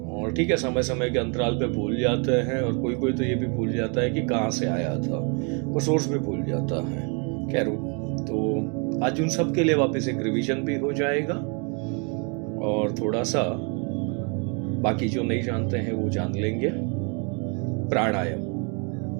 और ठीक है, समय समय के अंतराल पे भूल जाते हैं, और कोई कोई तो ये भी भूल जाता है कि कहाँ से आया था, वो सोर्स भी भूल जाता है। खैर, तो आज उन सब के लिए वापस एक रिवीजन भी हो जाएगा, और थोड़ा सा बाकी जो नहीं जानते हैं वो जान लेंगे। प्राणायाम,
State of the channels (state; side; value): quieter; left; 35.8 dB